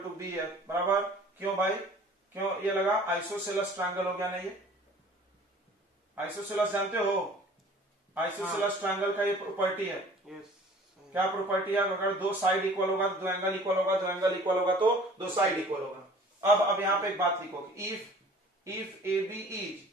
B F बराबर, क्यों भाई क्यों ये लगा, आइसोसेलेस ट्रायंगल हो गया ना, ये आइसोसेलेस जानते हो, आइसोसेलेस ट्रायंगल का ये प्रॉपर्टी है, क्या प्रॉपर्टी है, अगर दो साइड इक्वल होगा तो दो एंगल इक्वल होगा, दो एंगल इक्वल होगा तो दो साइड इक्वल होगा। अब यहाँ पे एक बात लिखो, if A B is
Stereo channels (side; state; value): both; normal; correlation 0.48